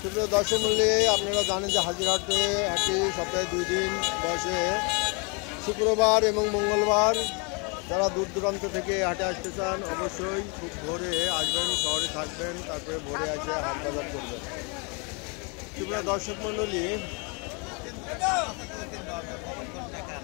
সুপ্রিয় দর্শক মূল্যে আপনারা জানেন যে হাজিরহাটে হাটে সপ্তাহে 2 দিন বসে, শুক্রবার এবং মঙ্গলবার। যারা দূর দূরান্ত থেকে হাটে আসতে চান অবশ্যই খুব ভোরে আসবেন, শহরে থাকবেন, তারপরে ভোরে এসে হাট বাজার করবেন। সুপ্রিয় দর্শক মণ্ডলী,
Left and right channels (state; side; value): quieter; right; 33.0 dB